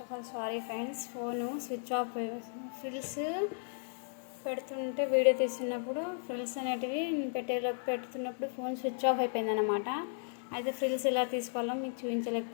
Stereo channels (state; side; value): silent; right; digital silence